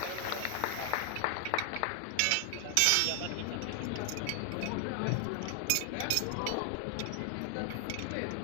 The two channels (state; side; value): different; both; correlation 0.00